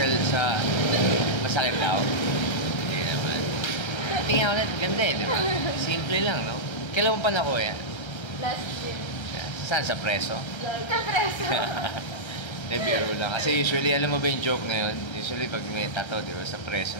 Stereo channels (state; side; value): late; right; 1.3 ms